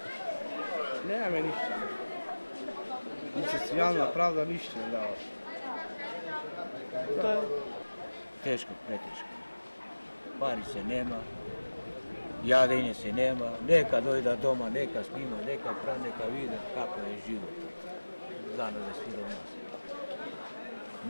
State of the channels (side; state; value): both; inverted; correlation -1.00